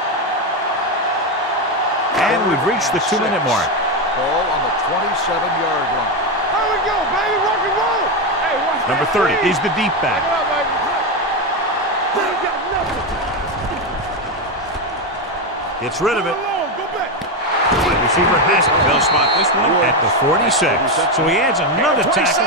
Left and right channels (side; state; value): both; normal; correlation 0.10